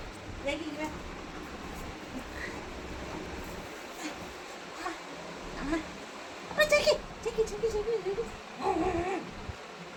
ஜாக்கி அம்மா அம்மா ஜாக்கி ஜாக்கி ஜாக்கி ஜாக்கி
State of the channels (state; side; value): identical; both; correlation 1.00